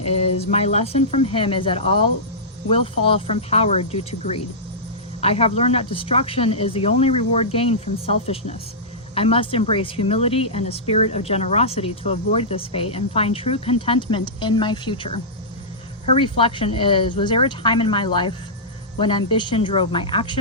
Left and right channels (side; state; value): both; normal; correlation -0.15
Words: my lesson from him is that all will fall from power due to greed. I have learned that destruction is the only reward gained from selfishness. I must embrace humility and a spirit of generosity to avoid this fate and find true contentment in my future. Her reflection is, was there a time in my life when ambition drove my